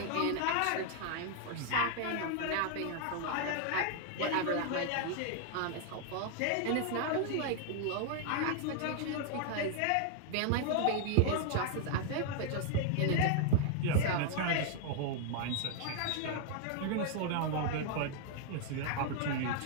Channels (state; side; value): different; both; correlation 0.00